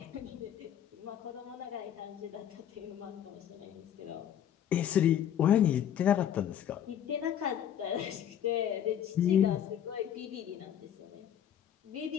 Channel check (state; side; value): quieter; right; 9.9 dB